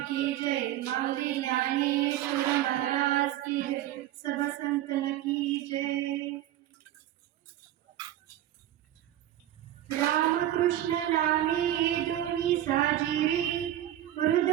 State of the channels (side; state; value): left; quieter; 12.8 dB